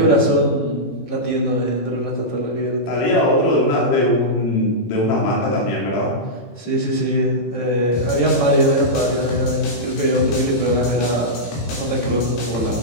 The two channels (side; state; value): right; late; 18 ms